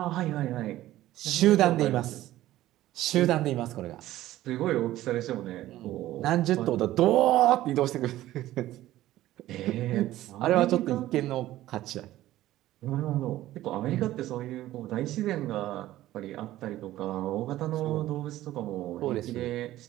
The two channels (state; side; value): quieter; left; 14.9 dB